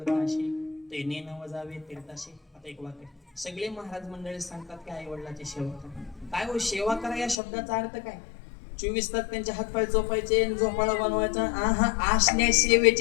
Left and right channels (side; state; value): right; drops out; at 7.4 s